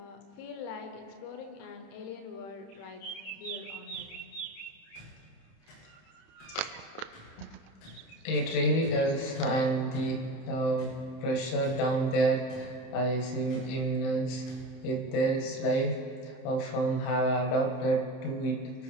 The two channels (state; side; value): late; right; 31 ms